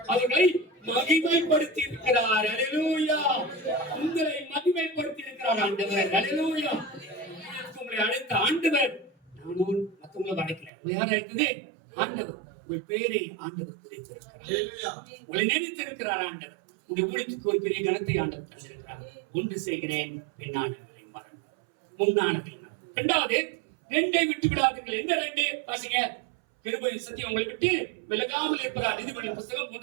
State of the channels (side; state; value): left; drops out; at 10.7 s